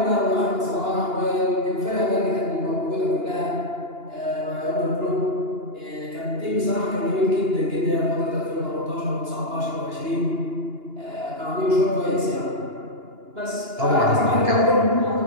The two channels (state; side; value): late; left; 2.9 ms